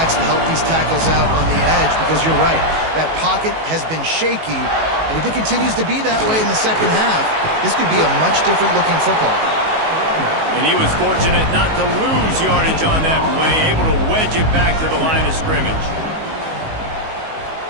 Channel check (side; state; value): left; late; 19 ms